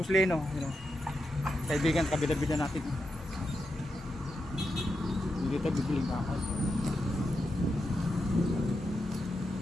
you know, kaibigan, kabida-bida natin. Dito bibiling bakal.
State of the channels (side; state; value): both; normal; correlation 0.87